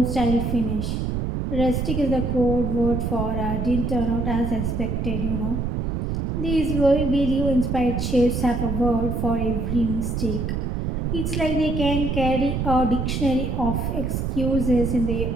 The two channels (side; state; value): right; noise; rumble, 1 dB below the sound